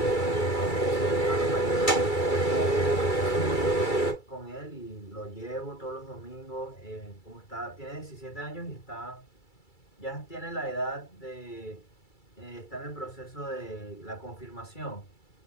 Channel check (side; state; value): right; late; 2.3 ms